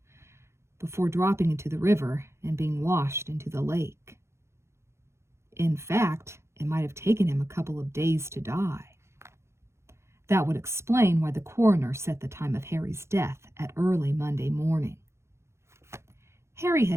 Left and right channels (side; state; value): left; late; 0.13 ms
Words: before dropping into the river and being washed into the lake. In fact, it might have taken him a couple of days to die. That would explain why the coroner set the time of Harry's death at early Monday morning. Harry